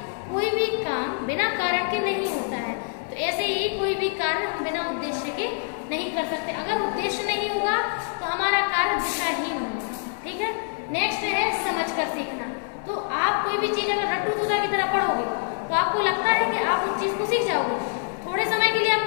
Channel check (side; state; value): right; silent; 61 dB below the other